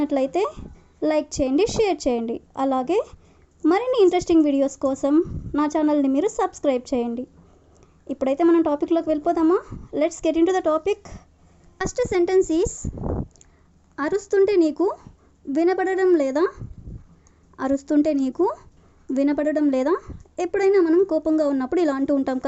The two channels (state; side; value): identical; both; correlation 1.00